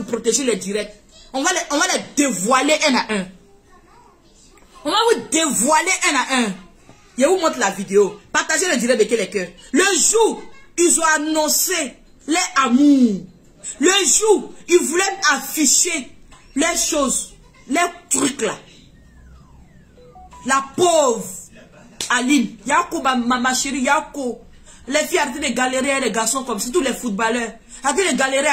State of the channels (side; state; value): both; identical; correlation 1.00